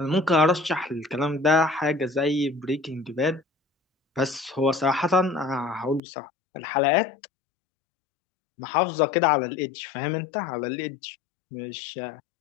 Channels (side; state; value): right; drops out; at 6.0 s